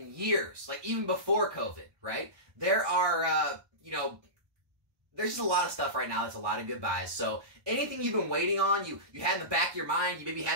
years, like even before COVID, right? There are, you know, there's just a lot of stuff right now that's a lot of good buys. So anything you've been waiting on, you had in the back of your mind, you maybe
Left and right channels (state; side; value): late; left; 1.1 ms